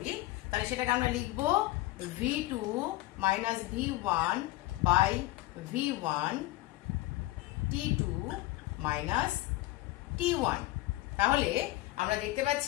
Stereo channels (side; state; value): right; quieter; 17.8 dB